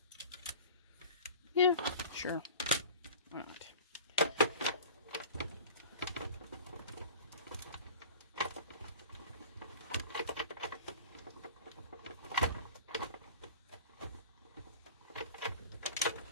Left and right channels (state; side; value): inverted; both; correlation -0.39